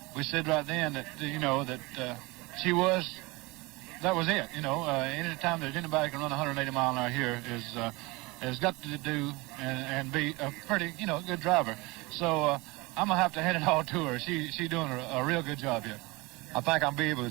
We said right then that, you know, that that was it. You know, any time that anybody can run 180 mile an hour here has got to do and be a pretty, you know, good driver. So I'm going to have to hand it all to her. She's doing a real good job here. I think I'll be able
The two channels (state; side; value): quieter; left; 23.9 dB